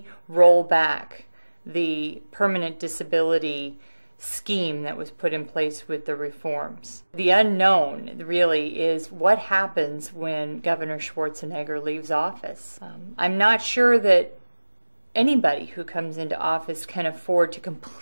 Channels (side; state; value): both; inverted; correlation -1.00